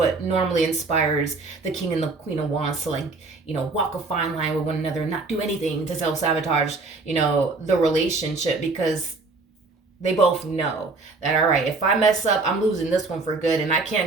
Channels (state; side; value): quieter; left; 3.8 dB